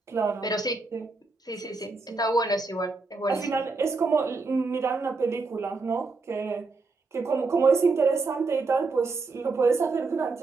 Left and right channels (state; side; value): quieter; left; 3.9 dB